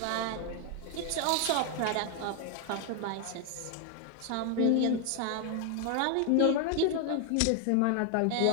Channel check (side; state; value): both; different; correlation 0.00